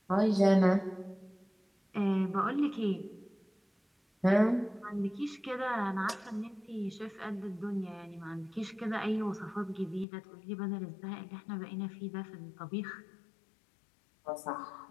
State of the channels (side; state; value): right; drops out; at 10.1 s